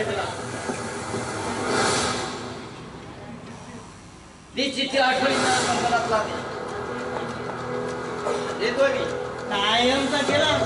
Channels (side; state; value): both; identical; correlation 1.00